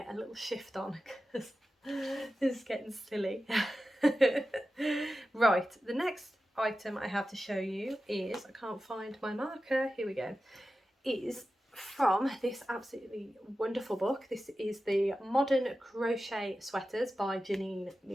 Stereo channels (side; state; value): both; normal; correlation 0.93